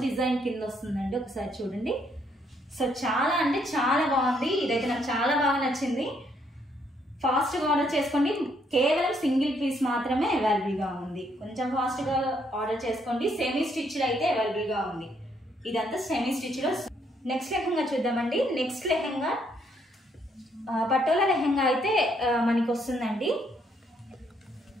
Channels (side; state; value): both; normal; correlation 0.71